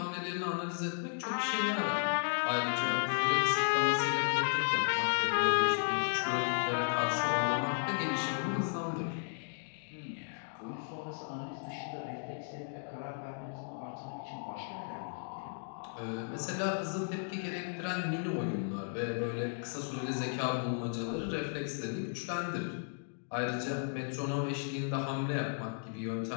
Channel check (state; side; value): silent; right; digital silence